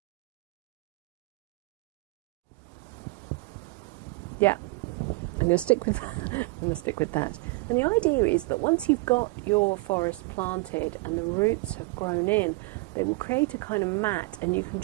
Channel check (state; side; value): quieter; left; 23.9 dB